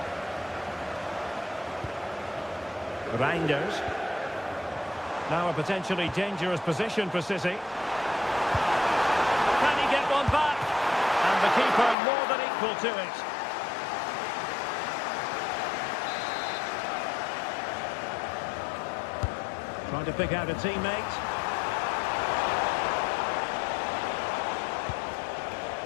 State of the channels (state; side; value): drops out; right; at 12.0 s